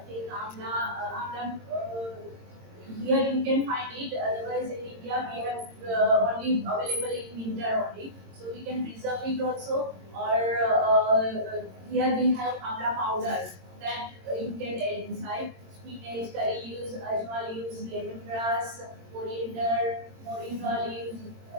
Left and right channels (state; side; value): late; left; 22 ms